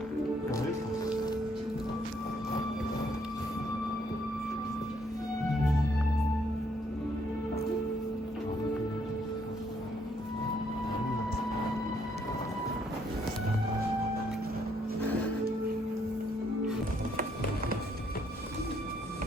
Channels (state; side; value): normal; both; correlation 0.70